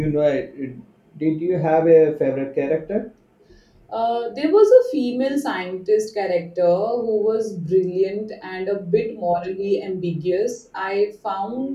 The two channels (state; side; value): identical; both; correlation 1.00